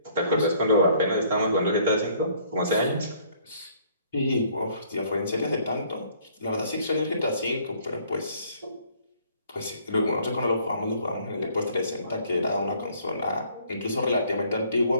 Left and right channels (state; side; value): inverted; both; correlation -0.61